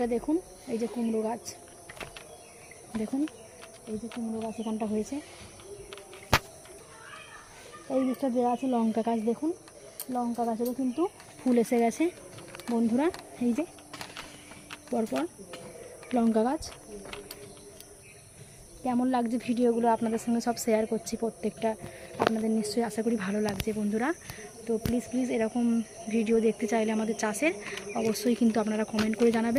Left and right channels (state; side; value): identical; both; correlation 1.00